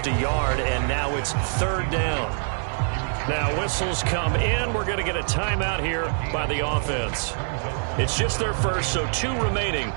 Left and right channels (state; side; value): silent; left; digital silence